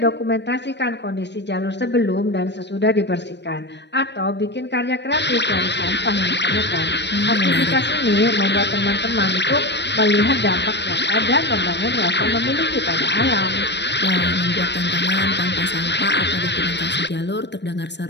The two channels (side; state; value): right; late; 0.50 ms